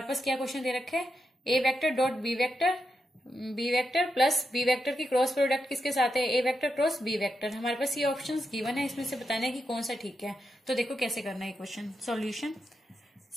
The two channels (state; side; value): normal; both; correlation 0.86